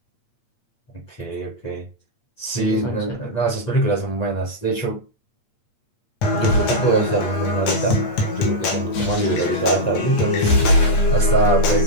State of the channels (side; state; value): right; late; 8.6 ms